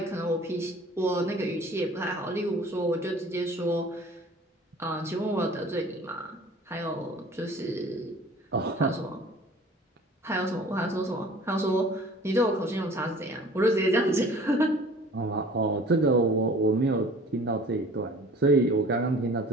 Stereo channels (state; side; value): normal; both; correlation 0.47